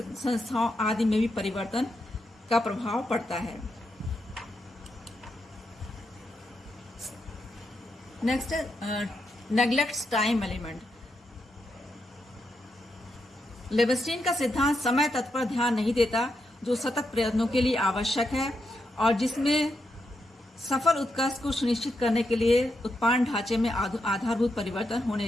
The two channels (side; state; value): both; normal; correlation 0.83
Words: आदि में भी परिवर्तन का प्रभाव पड़ता है। नेक्स्ट है नेग्लेक्ट्स टाइम एलिमेंट। लेविस्टीन का सिद्धांत समय तत्व पर ध्यान नहीं देता जो सतत प्रयत्नों के लिए आवश्यक है और जिसमें सफल उत्कर्ष को सुनिश्चित करने के लिए उत्पादन ढांचे में आधारभूत परिवर्तन